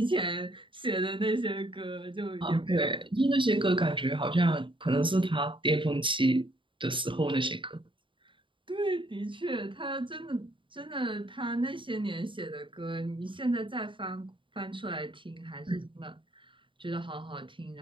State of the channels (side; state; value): left; late; 0.24 ms